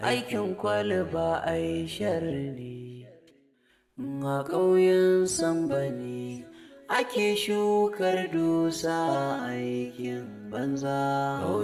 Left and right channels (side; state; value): both; identical; correlation 1.00